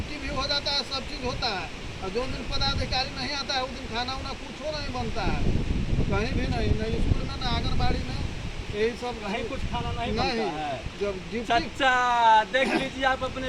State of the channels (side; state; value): both; identical; correlation 1.00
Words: भी हो जाता है, सब चीज़ होता है। और जो दिन पदाधिकारी नहीं आता है उस दिन खाना उना कुछो नहीं बनता है, कहीं भी नहीं, नहीं स्कूल में ना आंगनबाड़ी में, यही सब कहीं कुछ खाना नहीं बनता है। जब ड्यूटी, सच्चा देख लीजिए आप अपने